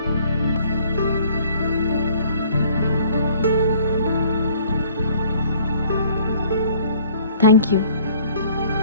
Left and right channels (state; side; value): inverted; both; correlation -0.56